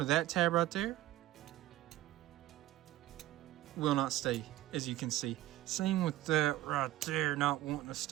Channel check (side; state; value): left; quieter; 15.4 dB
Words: that tab right there. Will not stay, as you can see. Same with that right there, not wanting to